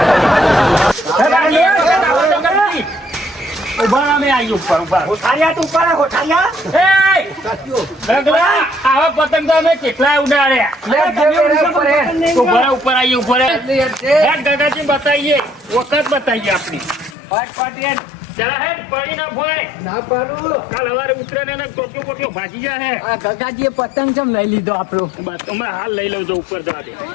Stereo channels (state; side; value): drops out; right; at 17.2 s